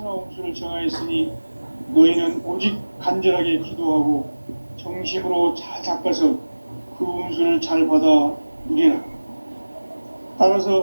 운수를 정하였으니 너희는 오직 간절하게 기도하고 정심으로 잘 닦아서 그 운수를 잘 받아 누리라. 따라서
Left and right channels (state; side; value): inverted; both; correlation -1.00